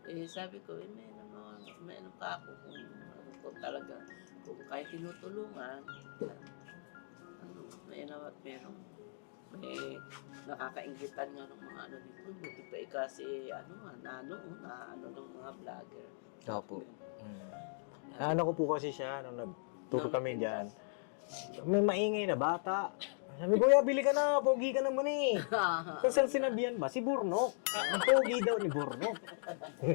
sabi ko, may ano pa ako kung talaga, kung kahit tinutulungan, may may nakakainggitan nga ng mga dito. Buti pa kasi, ng mga vlogger. Opo. Ano ko po kasi siya, nung nagturo kami dyan, may maingay na bata. Sabi, kuya, bili ka na, pogi ka naman eh. Kung saan sinabihan ba? Si Burnok. Ang pogi daw ni Burnok.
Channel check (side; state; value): right; silent; digital silence